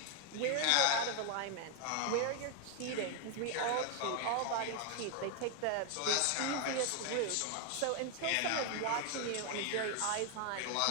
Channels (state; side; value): different; both; correlation 0.00